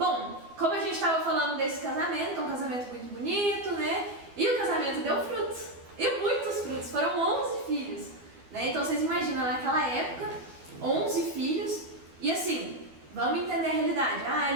como a gente estava falando desse casamento, um casamento muito bonito, né? E o casamento deu frutos, e muitos frutos, foram 11 filhos, né? Então vocês imaginam, naquela época, 11 filhos, e assim, vamos entender a realidade,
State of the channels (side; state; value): left; late; 12 ms